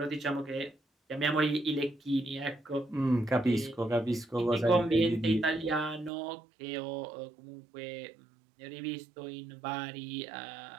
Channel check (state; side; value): drops out; left; at 6.1 s